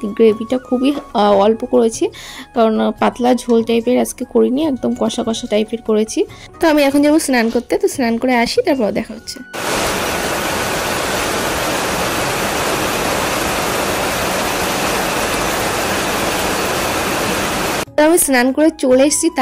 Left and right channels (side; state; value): both; identical; correlation 1.00